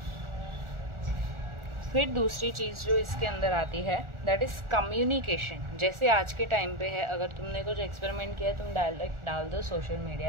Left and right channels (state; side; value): late; left; 1.4 ms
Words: फिर दूसरी चीज़ जो इसके अंदर आती है, दैट इज़ कम्युनिकेशन। जैसे आज के टाइम पे है, अगर तुमने कुछ एक्सपेरिमेंट किया है तुम डायरेक्ट डाल दो सोशल